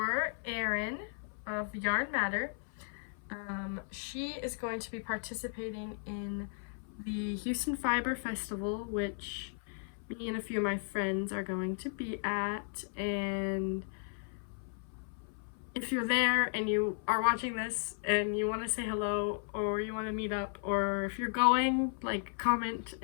Erin of Yarn Matter. She is going to be participating in the Houston Fiber Festival, which me and a few of my friends are going to be at. And if you're there and you are watching this and you want to say hello, or you want to meet up, or if you're going, like, comment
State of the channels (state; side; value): silent; right; 54 dB below the other